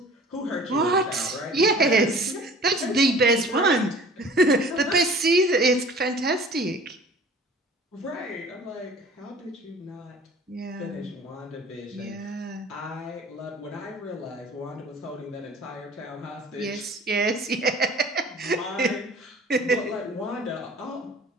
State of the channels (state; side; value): normal; both; correlation 0.47